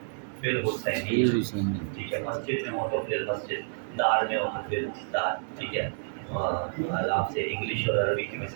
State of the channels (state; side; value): silent; left; digital silence